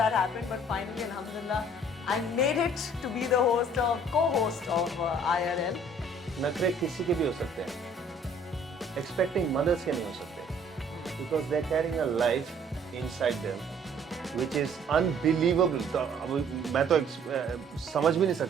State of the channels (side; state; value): both; normal; correlation 0.57